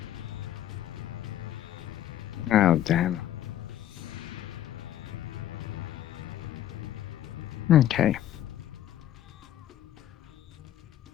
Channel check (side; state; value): right; quieter; 11.9 dB